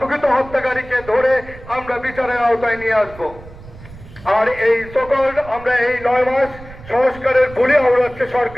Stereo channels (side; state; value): right; noise; rumble, 18 dB below the sound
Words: হত্যাকারীকে ধরে আমরা বিচারের আওতায় নিয়ে আসব। আর এই সকল আমরা এই 9 মাস সংস্কারের বলি আওড়াচ্ছে